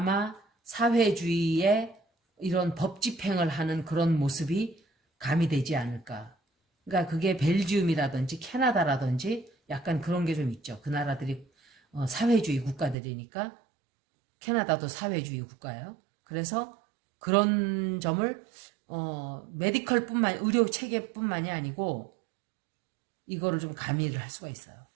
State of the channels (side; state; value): left; drops out; at 13.0 s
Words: 사회주의의 이런 법 집행을 하는 그런 모습이 가미되지 않을까. 그러니까 그게 벨지움이라든지 캐나다라든지 약간 그런 게 좀 있죠. 그 나라들이 사회주의 국가들이니까. 캐나다도 사회주의 국가예요. 그래서 그런 점을 의료 체계뿐만이 아니고 이거를 좀 가미를 할 수가 있어요.